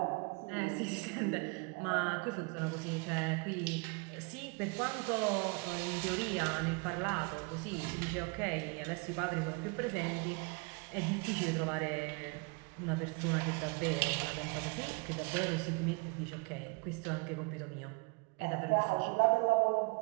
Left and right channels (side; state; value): left; quieter; 30.8 dB